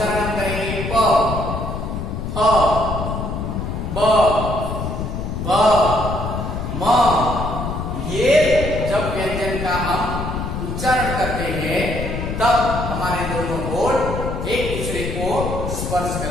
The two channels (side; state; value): left; noise; rumble, 4 dB below the sound